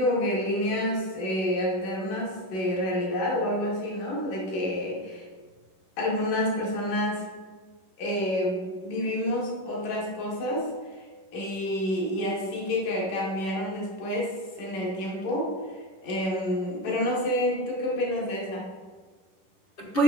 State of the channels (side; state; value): right; late; 11 ms